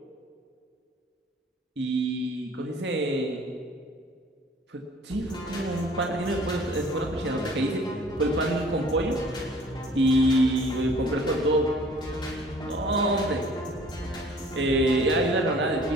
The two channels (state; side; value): normal; both; correlation 0.52